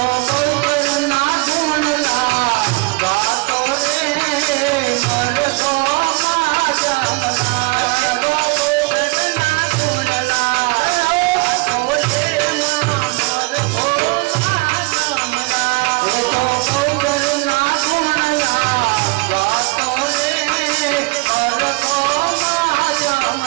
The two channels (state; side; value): quieter; left; 26.6 dB